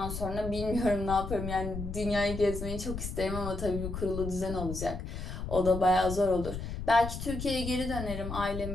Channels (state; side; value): noise; left; rumble, 6 dB below the sound